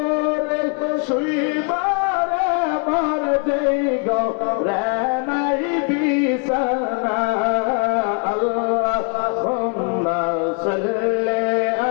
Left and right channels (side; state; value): right; quieter; 38.4 dB